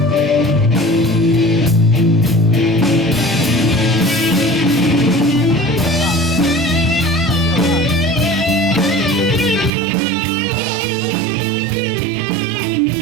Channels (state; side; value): drops out; left; at 9.7 s